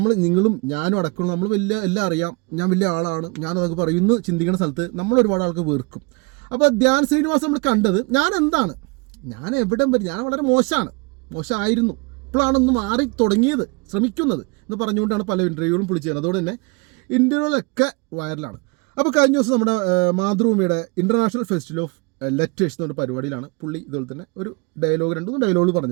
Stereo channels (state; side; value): quieter; left; 29.8 dB